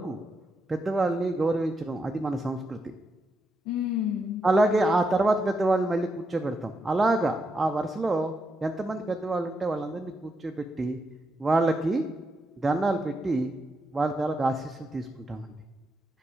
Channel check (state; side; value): normal; both; correlation 0.83